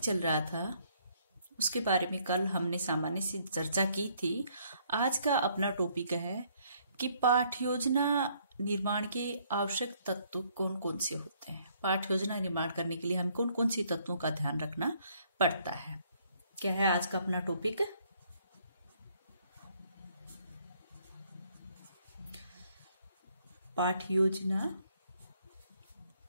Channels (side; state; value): both; inverted; correlation -0.67